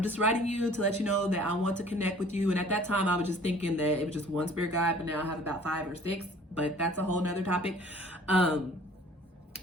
just writing you to let you know that I want to connect with you. And at that time, I was just thinking that it was just one spirit guide, but now I have about 5 or 6, but that's a whole nother topic.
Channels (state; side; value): normal; both; correlation 0.52